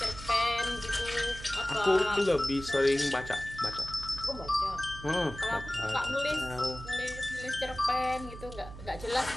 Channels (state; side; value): noise; right; hum, 13 dB below the sound